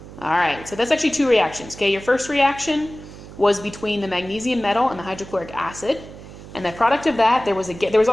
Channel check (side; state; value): right; noise; hum, 16 dB below the sound